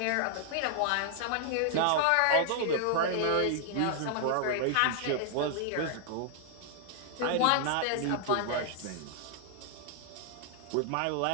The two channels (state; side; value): different; both; correlation 0.00